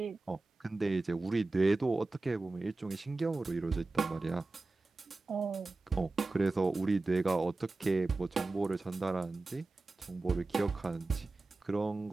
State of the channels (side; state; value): left; quieter; 3.3 dB